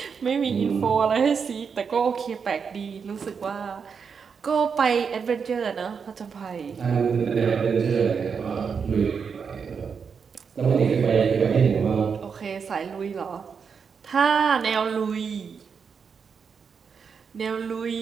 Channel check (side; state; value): left; quieter; 6.1 dB